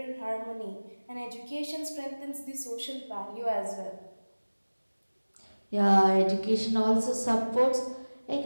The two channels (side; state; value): both; inverted; correlation -1.00